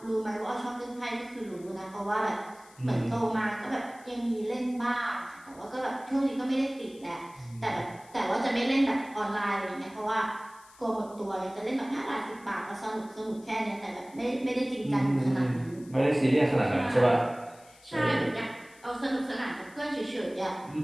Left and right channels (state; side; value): noise; left; hiss, 25 dB below the sound